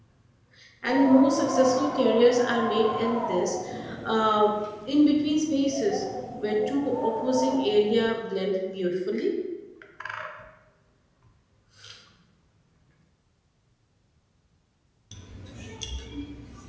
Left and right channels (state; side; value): identical; both; correlation 1.00